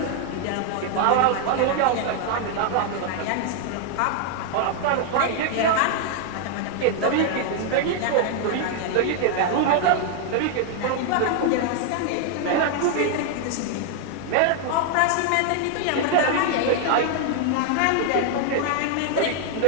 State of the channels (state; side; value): different; both; correlation 0.00